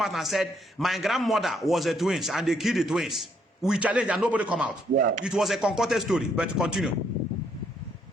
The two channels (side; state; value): both; normal; correlation 0.71